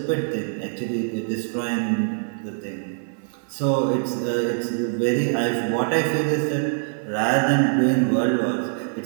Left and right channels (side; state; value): left; silent; 55 dB below the other